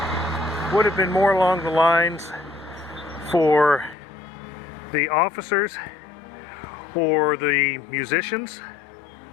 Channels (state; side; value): drops out; right; at 4.0 s